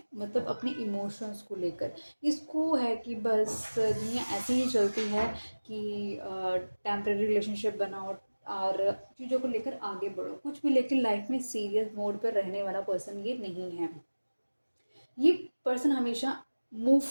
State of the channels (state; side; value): inverted; both; correlation -1.00